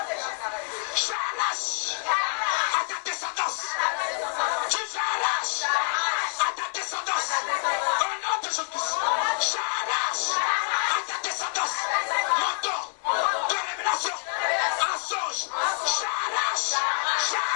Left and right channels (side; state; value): right; silent; 60 dB below the other